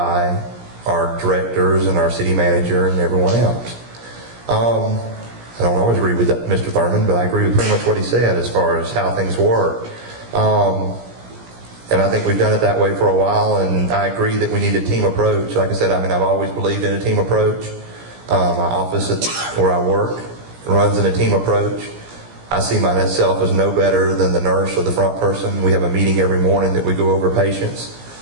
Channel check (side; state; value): left; late; 17 ms